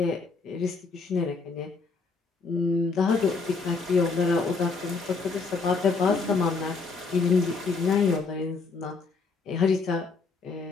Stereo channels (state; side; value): quieter; right; 4.3 dB